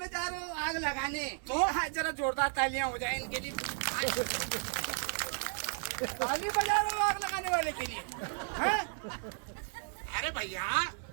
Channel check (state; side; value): silent; left; 55 dB below the other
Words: जा रहे हो आग लगाने? तो जरा जोरदार तालियां हो जाए इनके लिए। ताली बजा रहे हो आग लगाने वाले के लिए? अरे भैया